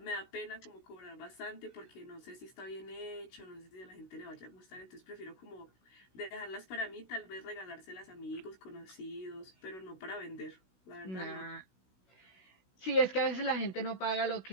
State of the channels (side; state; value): right; late; 16 ms